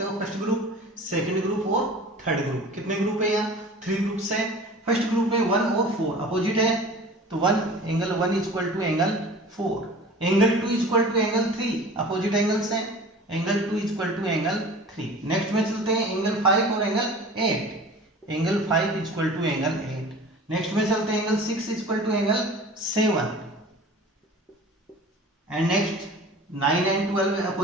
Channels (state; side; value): normal; both; correlation 0.41